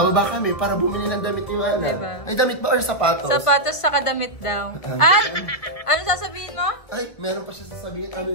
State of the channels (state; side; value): late; right; 2.0 ms